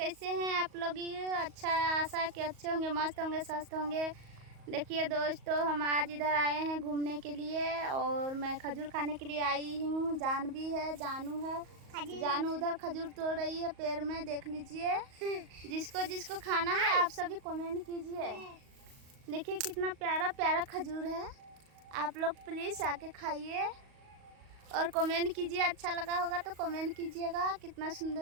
हैं आप लोग? ये अच्छा आशा है कि अच्छे होंगे, मस्त होंगे, स्वस्थ होंगे। देखिए दोस्तों, हम आज इधर आए हैं घूमने के लिए और मैं खजूर खाने के लिए आई हूँ। जानवी है, जानू है। जानू उधर खजूर तोड़ रही है पेड़ में, देख लीजिए। जिसको जिसको खाना है आप सभी कमेंट कीजिए। देखिए कितना प्यारा प्यारा खजूर है। आप लोग प्लीज़ आके खाइए और कमेंट कीजिए। अच्छा लगा होगा तो कमेंट कीजिएगा। कितना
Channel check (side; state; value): left; late; 38 ms